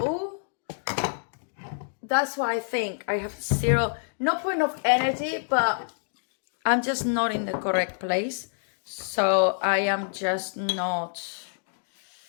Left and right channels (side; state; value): right; silent; digital silence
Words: that's why I think I have no point of energy, but I'm just not in the correct place. So I am just not